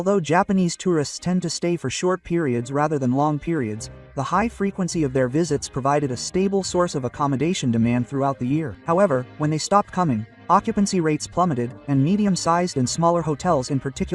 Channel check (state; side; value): identical; both; correlation 1.00